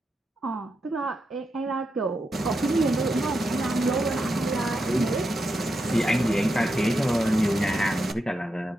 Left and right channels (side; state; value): both; normal; correlation 0.86